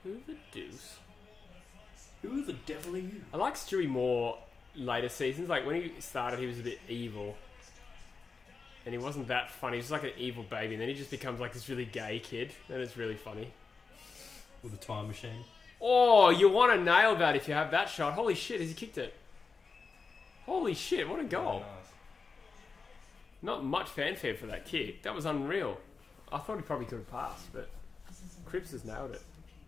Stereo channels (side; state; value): right; quieter; 4.7 dB